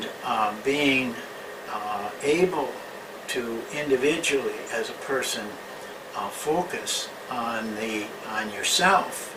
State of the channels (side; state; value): both; identical; correlation 1.00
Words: being able to individually, as a person, focus on yourself